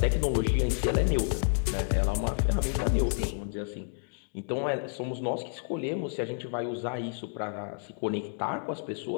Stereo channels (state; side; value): silent; right; digital silence